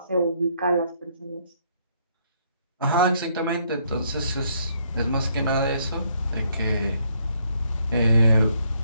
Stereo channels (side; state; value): both; inverted; correlation -0.70